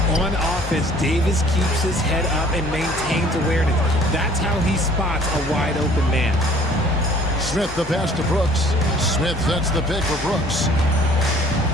On offense, Davis keeps his head up and maintains awareness. That's how he spots a wide-open man. Smith the pass to Brooks. Smith sets the pick for Brooks.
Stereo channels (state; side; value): normal; both; correlation 0.54